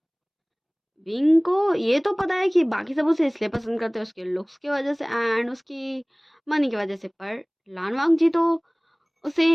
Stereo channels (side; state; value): both; identical; correlation 1.00